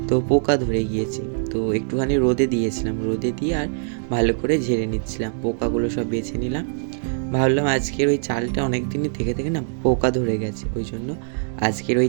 তো পোকা ধরে গিয়েছে। তো একটুখানি রোদে দিয়েছিলাম, রোদে দিয়ে আর ভালো করে ঝেড়ে নিচ্ছিলাম, পোকাগুলো সব বেছে নিলাম। ভাবলাম আজকের ওই চালটা অনেক দিনই থেকে থেকে না পোকা ধরে গেছে, ওই জন্য আজকের ওই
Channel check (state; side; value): silent; left; digital silence